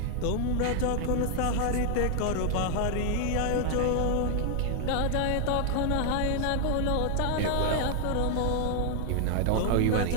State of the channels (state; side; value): different; both; correlation 0.00